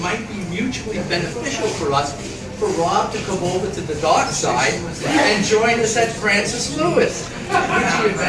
might be mutually beneficial for us, for Rob to come over to the dark side and join us at Francis Lewis, which he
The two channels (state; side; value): identical; both; correlation 1.00